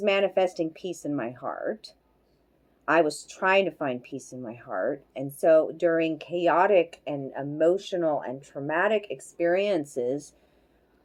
manifesting peace in my heart. I was trying to find peace in my heart. And so during chaotic and emotional and traumatic experiences,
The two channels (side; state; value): both; identical; correlation 1.00